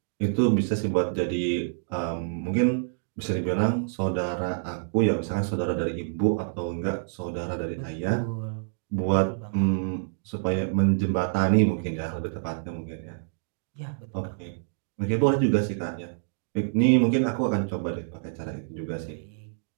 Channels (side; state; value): left; silent; digital silence